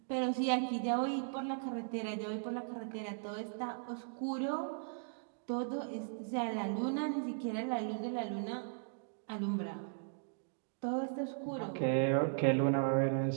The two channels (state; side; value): silent; left; digital silence